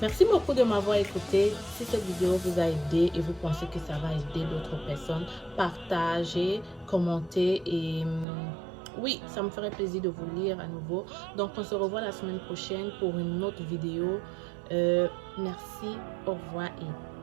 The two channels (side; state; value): left; drops out; at 8.2 s